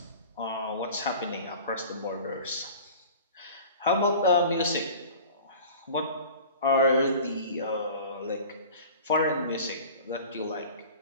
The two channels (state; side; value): inverted; both; correlation -0.41